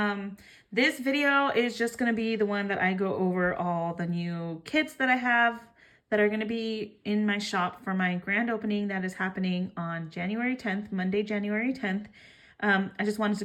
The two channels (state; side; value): identical; both; correlation 1.00